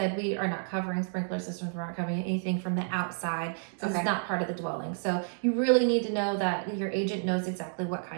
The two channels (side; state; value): left; silent; digital silence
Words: we are not covering sprinkler systems. We're not covering anything from the outside. So it's not part of the dwelling. So you really need to know that your agent knows exactly what